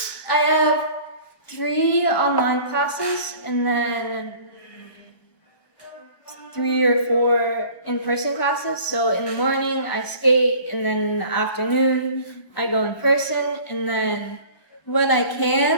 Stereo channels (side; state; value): right; late; 1.3 ms